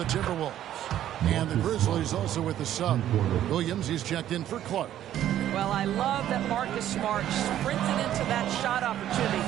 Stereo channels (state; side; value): quieter; left; 11.8 dB